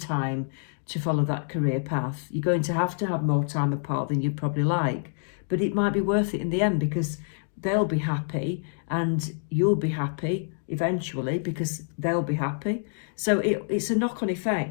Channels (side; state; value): right; silent; digital silence